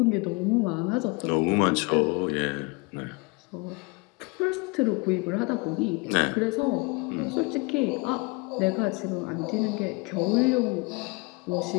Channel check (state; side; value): quieter; right; 28.0 dB